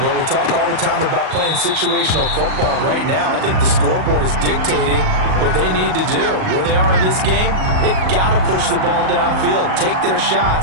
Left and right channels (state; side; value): late; left; 38 ms